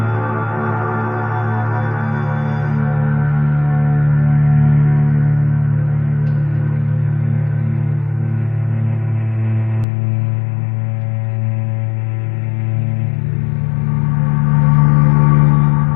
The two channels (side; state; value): right; drops out; at 9.9 s